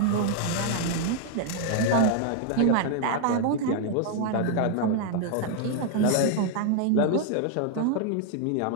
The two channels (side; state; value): both; different; correlation 0.00